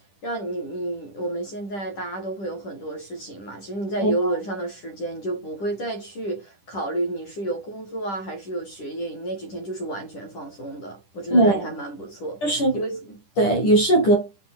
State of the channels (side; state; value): right; late; 10 ms